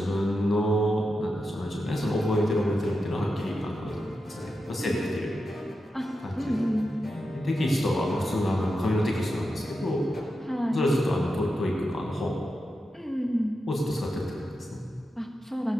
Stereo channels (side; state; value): both; normal; correlation 0.88